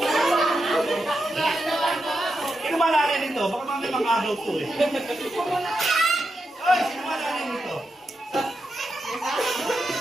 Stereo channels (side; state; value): both; normal; correlation 0.86